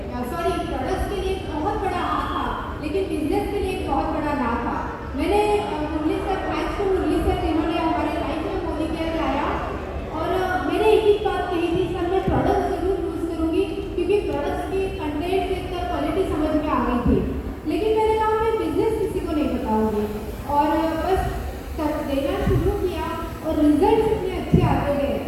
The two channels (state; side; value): identical; both; correlation 1.00